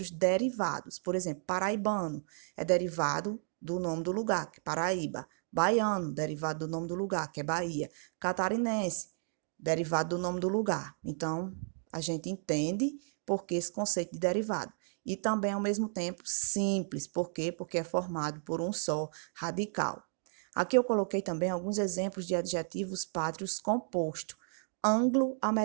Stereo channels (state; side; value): silent; left; digital silence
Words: derivados. Por exemplo, paraibano é derivado do nome do lugar, que é Paraíba. Baiano, derivado do nome do lugar, que é Bahia. Catarinense, derivado do nome do lugar. Então, a gente entende por que esse conceito de derivado. E também, ao mesmo tempo, simples. Por quê? Porque é formado por um só radical. Aqui eu coloquei também alguns exemplos de adjetivos pátrios compostos.